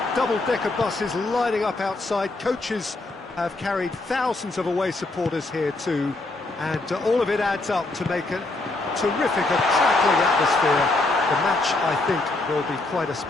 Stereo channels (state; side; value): quieter; right; 3.0 dB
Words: double-decker buses lining up outside. Coaches have carried thousands of away supporters here too, and all of it adds up to make a terrific, a crackling atmosphere. The match, I think, will be quite a